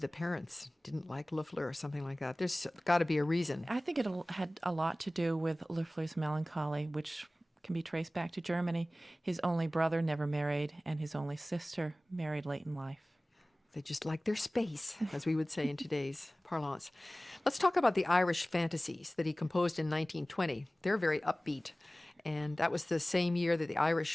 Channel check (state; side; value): normal; both; correlation 0.98